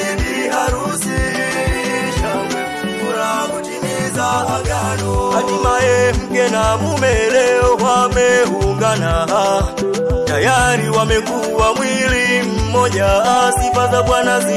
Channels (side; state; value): both; identical; correlation 1.00